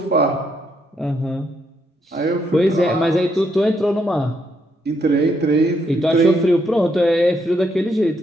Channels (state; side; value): normal; both; correlation 0.75